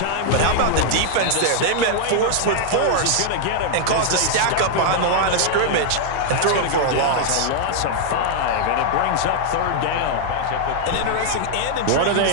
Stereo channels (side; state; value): both; different; correlation -0.01